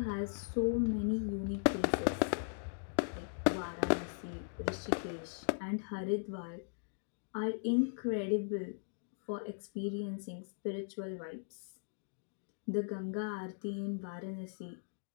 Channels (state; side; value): silent; right; digital silence